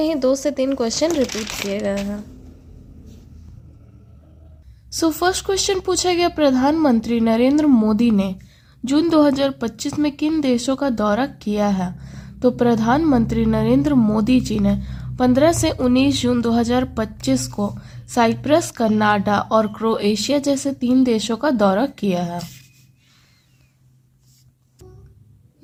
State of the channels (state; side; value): identical; both; correlation 1.00